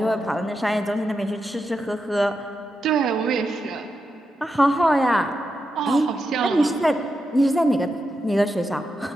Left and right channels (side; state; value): both; normal; correlation 0.86